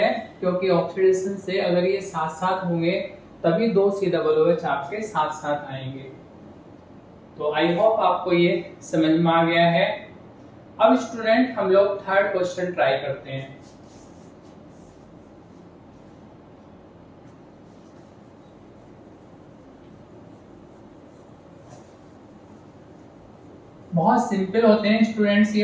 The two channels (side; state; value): both; identical; correlation 1.00